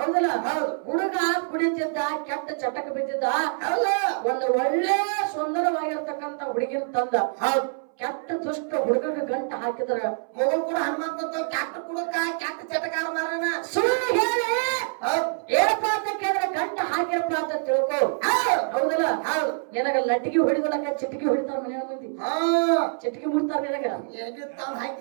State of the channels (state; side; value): silent; left; 61 dB below the other